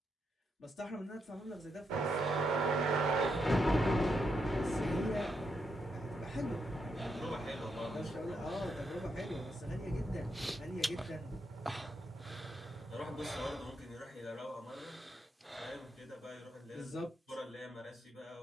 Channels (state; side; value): normal; both; correlation 0.81